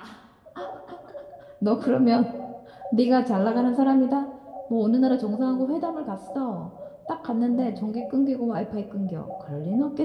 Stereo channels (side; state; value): both; identical; correlation 1.00